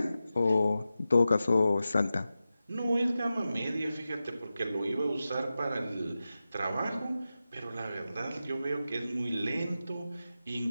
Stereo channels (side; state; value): both; inverted; correlation -0.93